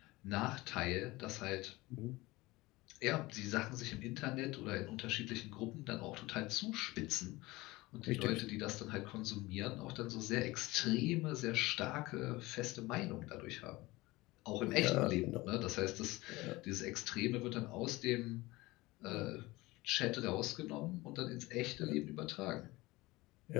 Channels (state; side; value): quieter; right; 20.8 dB